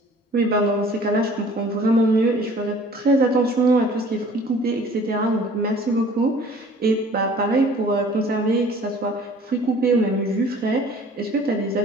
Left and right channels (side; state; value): both; normal; correlation 0.51